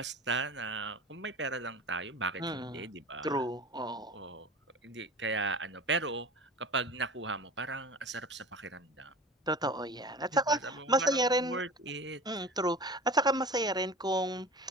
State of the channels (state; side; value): normal; both; correlation 0.36